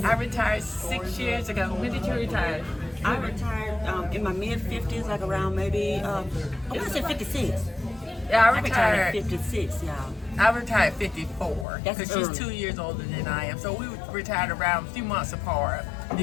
I retired 6 years ago. When did you retire? I retired in my mid 50s, like around maybe I want to say 56. Yeah, I I retired retired. at 56, y'all. I retired 54 That's because she's early. 2 years older than I am. So we retired around a few months apart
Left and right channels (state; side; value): drops out; right; at 11.7 s